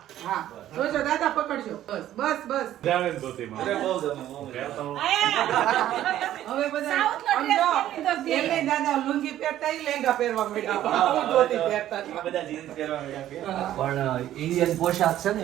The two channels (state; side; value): quieter; left; 12.6 dB